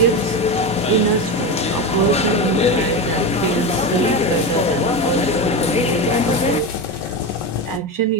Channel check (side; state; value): both; normal; correlation 0.19